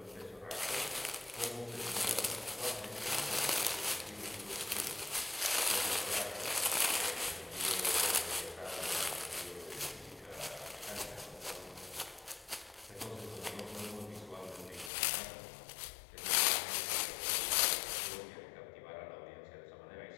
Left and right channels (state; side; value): drops out; right; at 14.9 s